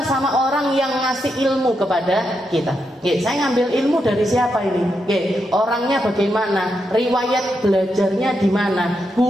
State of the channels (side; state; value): both; normal; correlation 0.83